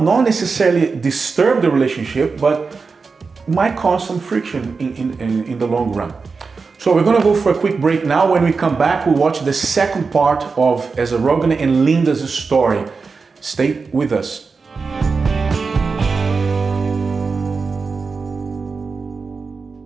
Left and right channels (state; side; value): quieter; left; 4.7 dB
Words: necessarily disturb the relationship, but might cause some friction in the long run. So we're going to go for a quick break now. When we come back, we'll watch the second part of Ezra Rogan and Linda's story. Stay with us.